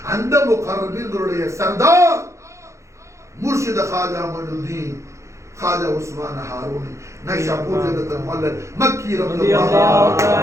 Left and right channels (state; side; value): late; left; 0.14 ms